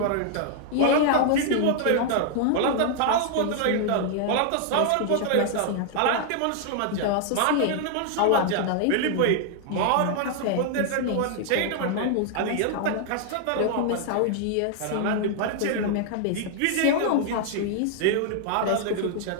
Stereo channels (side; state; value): both; different; correlation 0.00